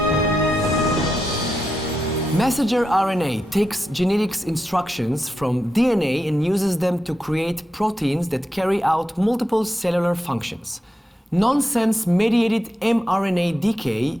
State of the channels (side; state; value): both; normal; correlation 0.87